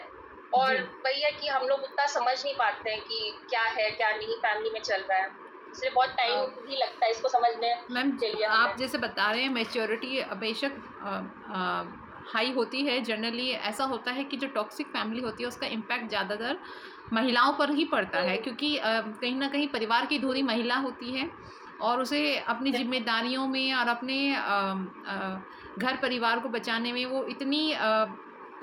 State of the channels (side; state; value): both; identical; correlation 1.00